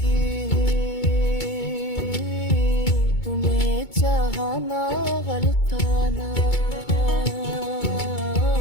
तुम्हें चाहना गलताना,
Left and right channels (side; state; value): right; late; 2.2 ms